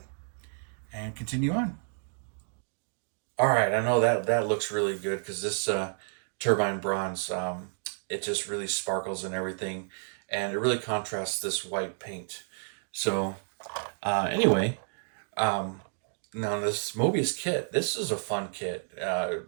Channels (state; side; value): silent; left; digital silence